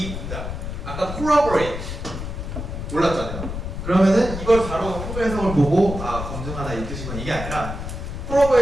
문장 아까 corroborate 몰랐잖아요. 그러면은 이걸 바로 한글 해석을 보고 검증하다 이 뜻이구나 이게 아니라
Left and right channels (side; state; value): left; noise; rumble, 6 dB below the sound